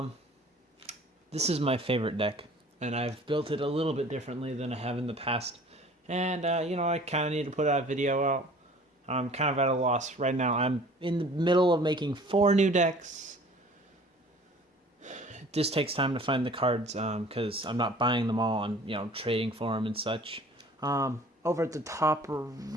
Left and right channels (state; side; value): normal; both; correlation 0.49